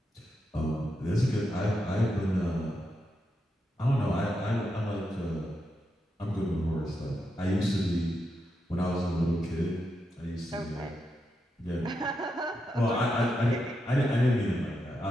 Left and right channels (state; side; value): normal; both; correlation 0.85